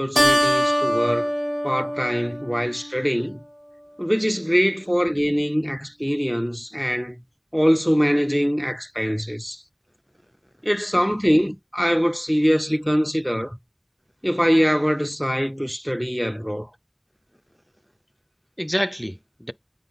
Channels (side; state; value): both; identical; correlation 1.00